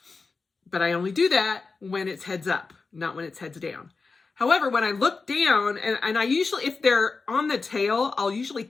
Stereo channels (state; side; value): quieter; right; 4.3 dB